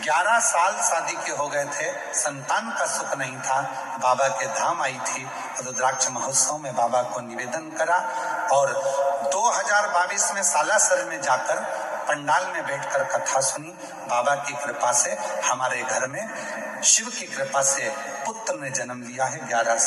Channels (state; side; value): identical; both; correlation 1.00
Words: साल शादी के हो गए थे, संतान का सुख नहीं था। बाबा के धाम आई थी, रुद्राक्ष महोत्सव में बाबा को निवेदन करा और 2022 में सालासर में जाकर पंडाल में बैठकर कथा सुनी। बाबा की कृपा से हमारे घर में शिव की कृपा से पुत्र ने जन्म लिया है 11